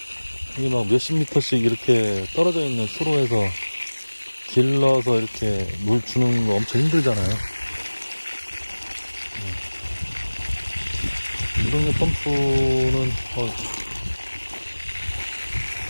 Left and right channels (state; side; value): inverted; both; correlation -1.00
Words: 이게 막 몇십 미터씩 이렇게 떨어져 있는 수로에서 길러서 이렇게 물 주는 거 엄청 힘들잖아요. 무동력 펌프는